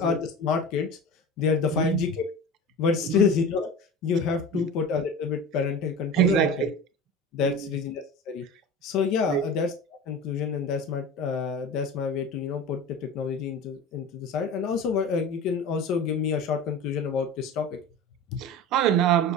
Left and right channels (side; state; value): both; normal; correlation 0.32